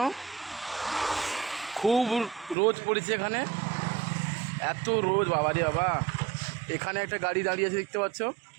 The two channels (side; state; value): left; drops out; at 2.6 s